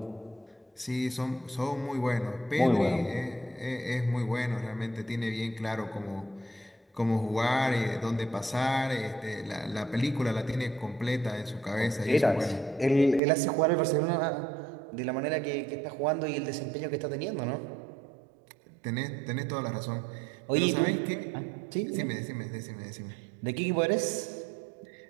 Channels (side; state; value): left; drops out; at 13.2 s